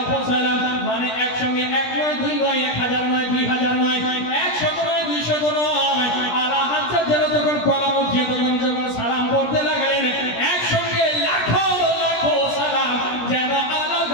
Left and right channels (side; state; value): right; late; 17 ms